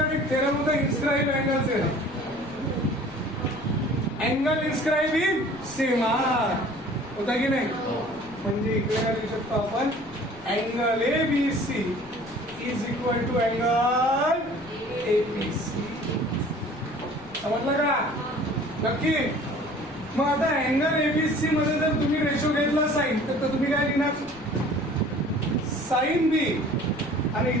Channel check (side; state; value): left; noise; rumble, 21 dB below the sound